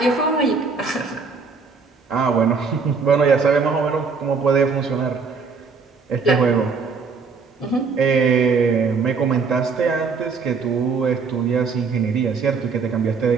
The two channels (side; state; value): left; quieter; 4.9 dB